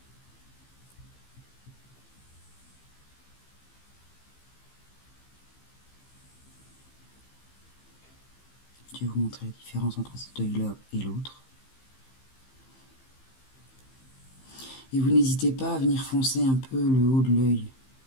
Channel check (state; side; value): late; right; 15 ms